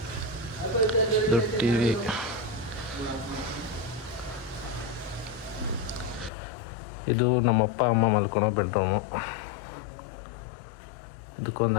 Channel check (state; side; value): drops out; right; at 6.3 s